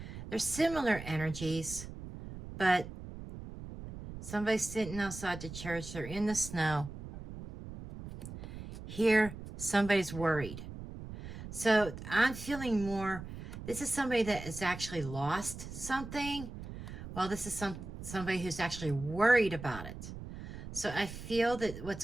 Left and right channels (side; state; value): right; noise; rumble, 11 dB below the sound